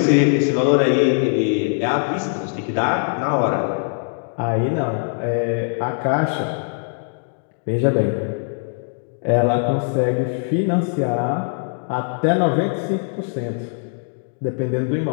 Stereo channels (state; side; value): silent; right; digital silence